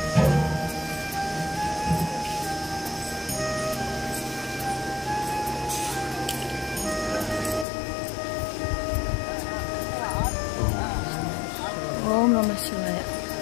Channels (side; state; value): right; drops out; at 7.7 s